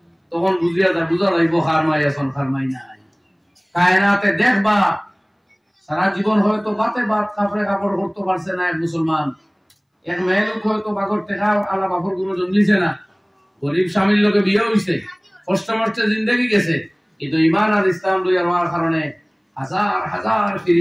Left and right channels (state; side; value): identical; both; correlation 1.00